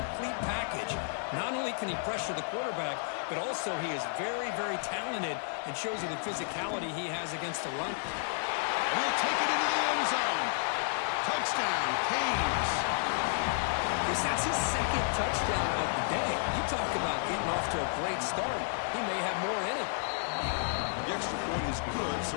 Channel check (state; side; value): silent; right; digital silence